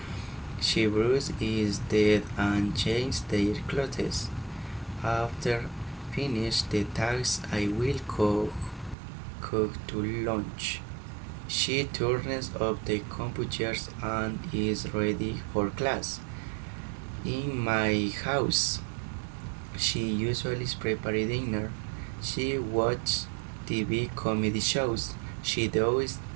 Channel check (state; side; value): drops out; left; at 9.0 s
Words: She brushes his teeth and changes their clothes. After finish the tasks, I will cook to lunch. She turns off the computers and is ready for class. In my house, she usually prepares dinner. She watches TV comedy shows. She does